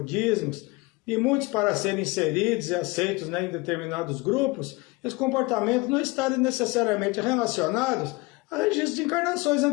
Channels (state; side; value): quieter; right; 24.0 dB